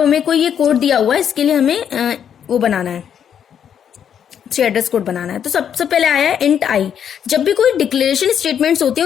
कोई ये कोड दिया हुआ है, इसके लिए हमें वो बनाना है, 3 एड्रेस कोड बनाना है। तो सबसे पहले आया है इंट आई। जब भी कोई डिक्लेरेशन स्टेटमेंट्स होते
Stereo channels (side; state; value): right; quieter; 8.6 dB